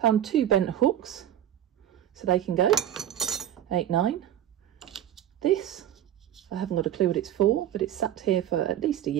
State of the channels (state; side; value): quieter; left; 11.4 dB